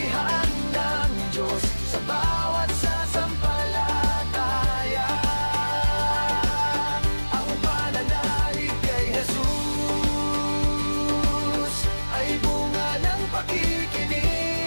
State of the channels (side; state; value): both; inverted; correlation -1.00